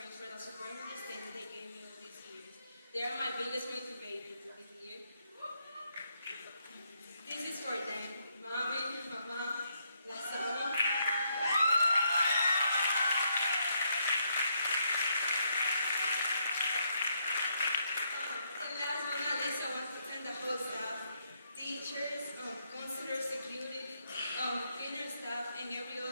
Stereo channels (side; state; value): both; inverted; correlation -0.76